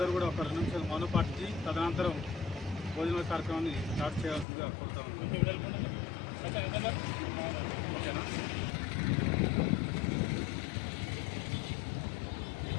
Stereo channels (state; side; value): drops out; right; at 4.5 s